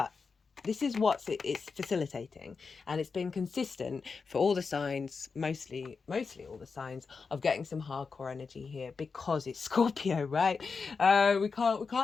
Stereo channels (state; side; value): quieter; right; 5.0 dB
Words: This is what it's facilitating, and it's been consistent for all the signs, mostly all the signs of getting some hardcore energy here because it's Scorpio, right? We